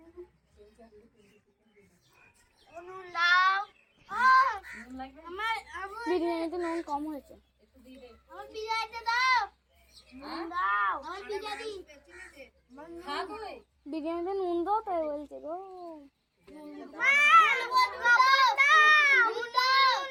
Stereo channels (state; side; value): identical; both; correlation 1.00